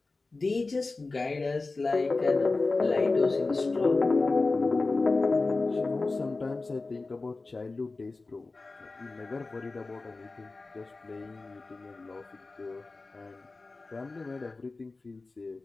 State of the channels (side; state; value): right; quieter; 3.6 dB